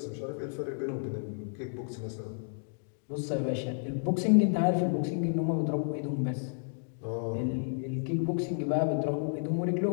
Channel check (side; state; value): right; silent; digital silence